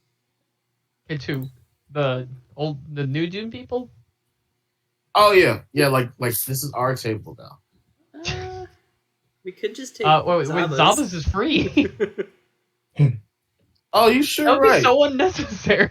Okay, to the new Dune people. Oh yeah, like this is our table now. We could just take wait, Zaba's is free. Oh, you That sure would be right? so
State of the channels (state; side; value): identical; both; correlation 1.00